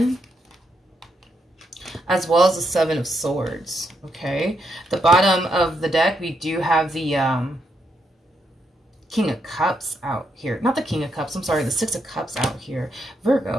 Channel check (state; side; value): normal; both; correlation 0.79